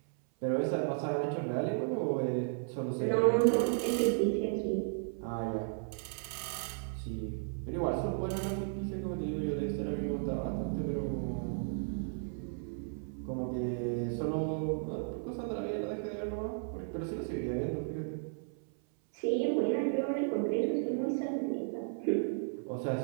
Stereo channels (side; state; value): left; silent; 55 dB below the other